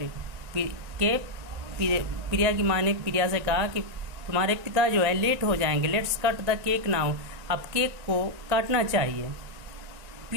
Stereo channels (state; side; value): late; left; 1.9 ms